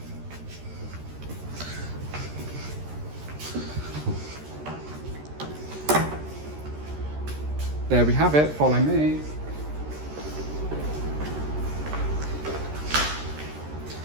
There we have it, follow me.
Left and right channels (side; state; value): left; late; 13 ms